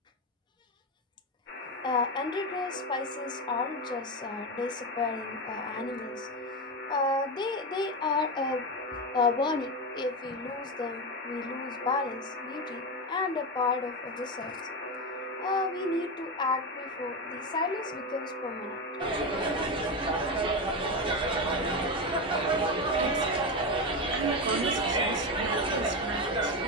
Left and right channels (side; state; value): both; normal; correlation 0.15